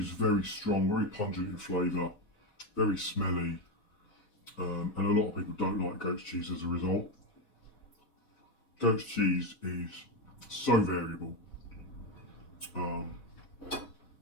very strong, very pungent in flavour, very smelly, and a lot of people don't like goat's cheese as a result. Goat's cheese is so variable.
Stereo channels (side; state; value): right; late; 4.1 ms